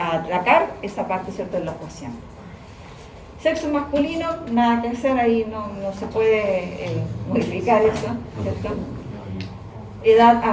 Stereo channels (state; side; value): identical; both; correlation 1.00